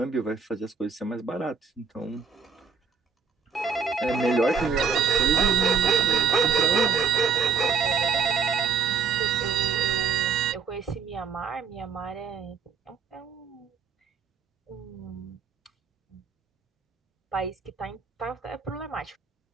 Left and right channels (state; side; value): quieter; left; 5.7 dB